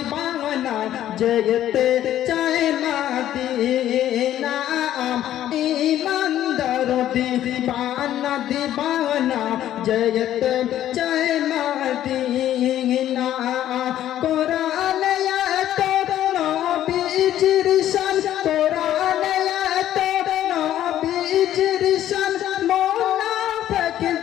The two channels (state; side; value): quieter; right; 12.1 dB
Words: যেতে চায় মদিনা, ইমানদার দিবানা দিবানা যেতে চায় মদিনা। কোরআনে এত নবীজির শান, কোরআনে এত নবীজির শান, মুনাফিক